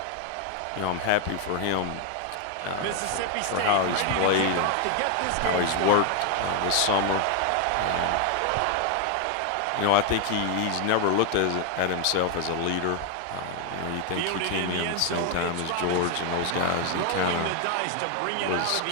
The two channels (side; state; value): both; different; correlation 0.00